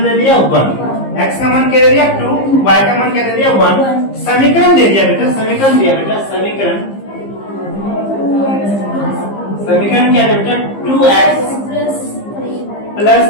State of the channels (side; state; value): right; late; 15 ms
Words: दे दिया? 1। x का मान क्या दे दिया? 2, y का मान क्या दे दिया? 1। समीकरण दे दिया बेटा, समीकरण दिया बेटा, समीकरण क्या है बेटा? 2x